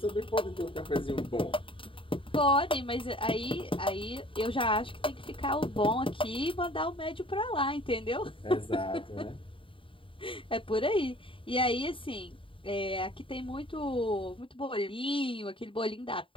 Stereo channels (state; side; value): late; right; 0.25 ms